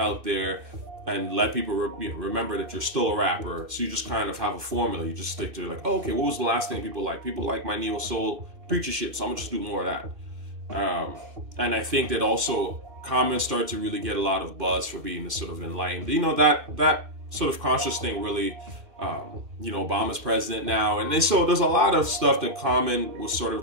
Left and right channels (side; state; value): left; late; 2.6 ms